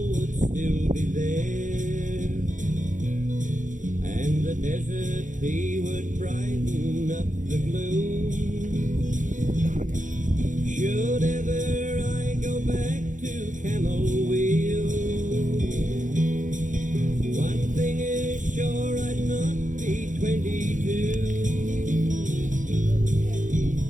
desert tea would brighten up the gloom. Should ever I go back to Camel Wheel, one thing is sure, I'd not be 22.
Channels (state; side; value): late; left; 0.37 ms